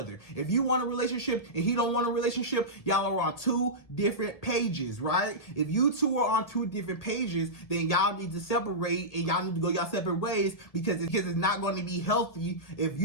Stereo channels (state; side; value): late; right; 1.6 ms